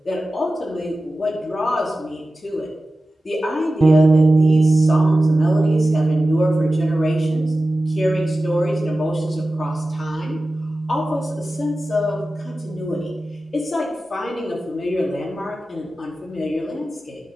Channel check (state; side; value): normal; both; correlation 0.95